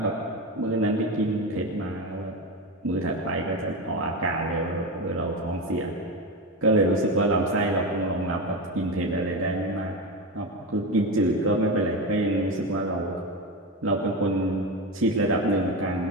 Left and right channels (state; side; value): normal; both; correlation 0.18